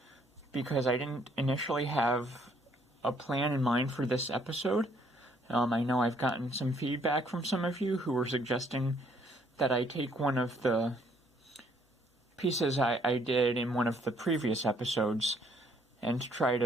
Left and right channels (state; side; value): normal; both; correlation 0.66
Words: because I didn't initially have a plan in mind for this episode. I know I've gotten some feedback from some of you who were suggesting that I take one of the pieces I did in one of the previous episodes and try